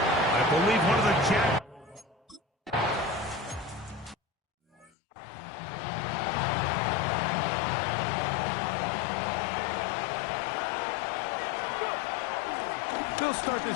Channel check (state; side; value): drops out; right; at 4.9 s